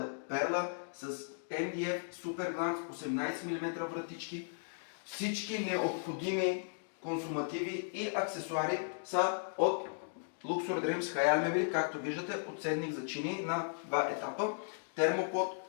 Перла с MDF Super Glance 18 мм вратички. Всички необходими консумативи и аксесуари са от Luxor Dreams Хаял мебели, както виждате, подседник за чини на два етапа, термопод,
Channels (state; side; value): silent; right; digital silence